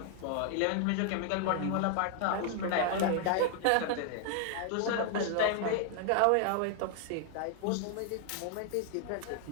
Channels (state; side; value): different; both; correlation 0.00